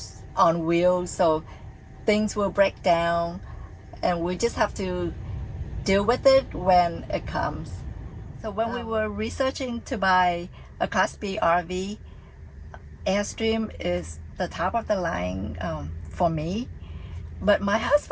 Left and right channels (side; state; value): both; identical; correlation 1.00